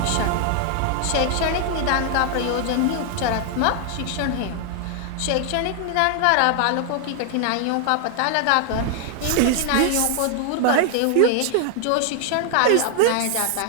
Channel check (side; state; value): both; different; correlation 0.00